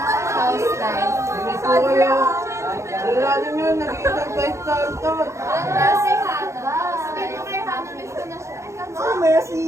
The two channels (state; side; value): late; left; 0.14 ms